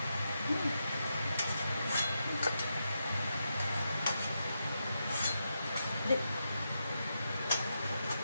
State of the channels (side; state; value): both; inverted; correlation -0.85